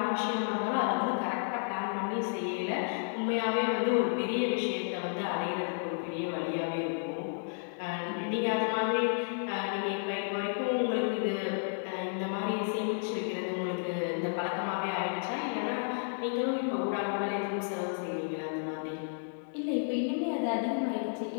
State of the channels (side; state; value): right; silent; 56 dB below the other